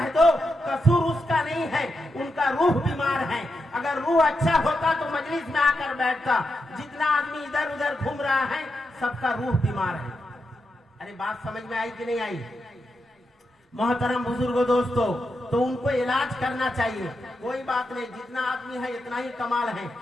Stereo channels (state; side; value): normal; both; correlation 0.86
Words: दो कसूर उसका नहीं है, उनका रूह बीमार है। अगर रूह अच्छा होता तो मजलिस में आकर बैठता। जितना आदमी इधर उधर घूम रहा है सबका रूह बीमार है। अरे बात समझ में आई कि नहीं आई? मोहतरम बुजुर्गों दोस्तों, तो उनको इलाज करना चाहिए। कोई बात नहीं, जितना आदमी है इतना ही कमाल है।